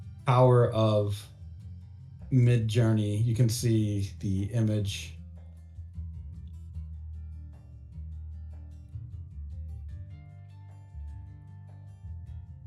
power of Midjourney, you can see the image.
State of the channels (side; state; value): both; identical; correlation 1.00